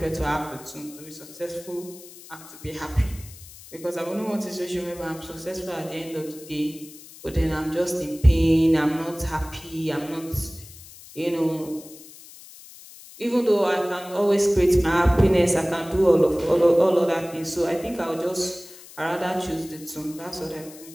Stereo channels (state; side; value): noise; left; hiss, 19 dB below the sound